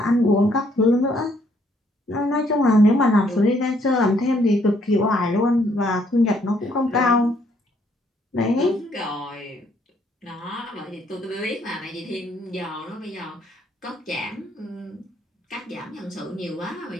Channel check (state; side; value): normal; both; correlation 0.68